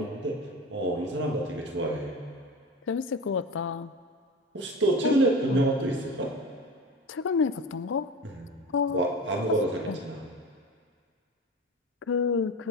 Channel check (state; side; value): normal; both; correlation 0.31